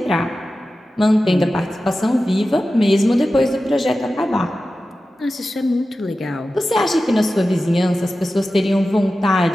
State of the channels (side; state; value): both; normal; correlation 0.94